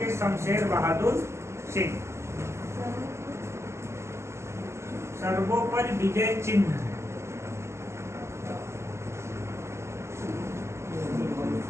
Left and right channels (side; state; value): left; late; 0.13 ms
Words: शमशेर बहादुर सिंह। सर्वोपरि विजय चिन्ह है।